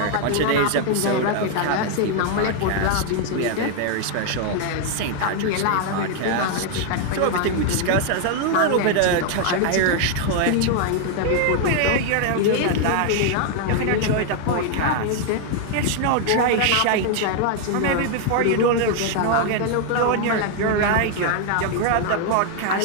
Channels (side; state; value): both; different; correlation 0.00